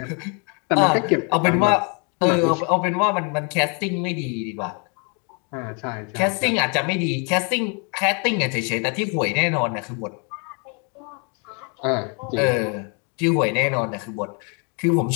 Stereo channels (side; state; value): right; quieter; 36.2 dB